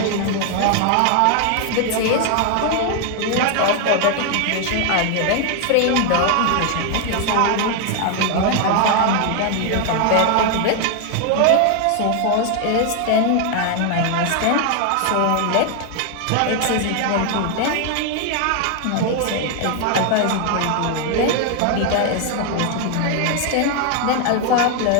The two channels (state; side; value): different; both; correlation 0.01